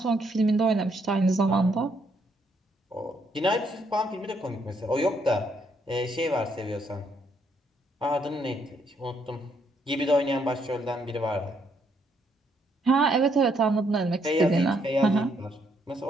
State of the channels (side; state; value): both; normal; correlation 0.72